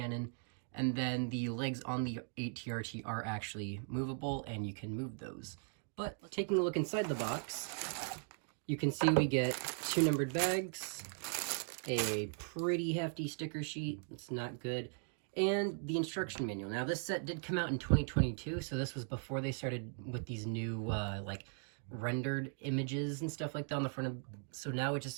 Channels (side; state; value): left; silent; 52 dB below the other